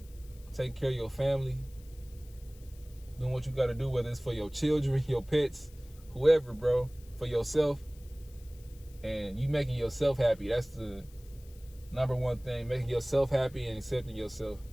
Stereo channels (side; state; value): left; noise; hiss, 25 dB below the sound